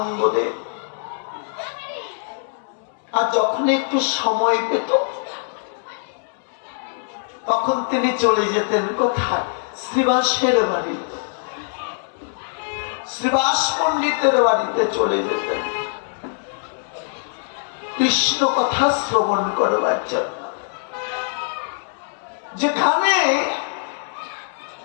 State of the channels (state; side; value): silent; right; 64 dB below the other